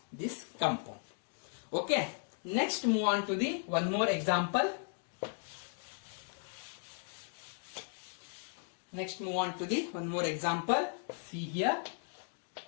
this compound. Okay, next move on to the one more example. Next move on to the one more example. See here,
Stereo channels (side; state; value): right; silent; 54 dB below the other